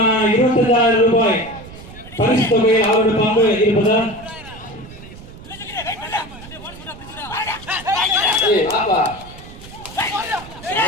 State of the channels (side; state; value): right; noise; rumble, 17 dB below the sound